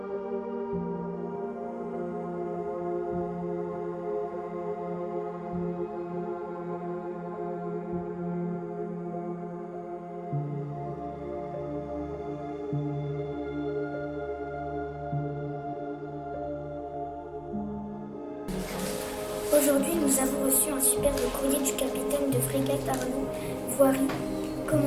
Aujourd'hui, nous avons reçu un superbe courrier du capitaine de frégate Arnaud Voiry,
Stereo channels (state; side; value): identical; both; correlation 1.00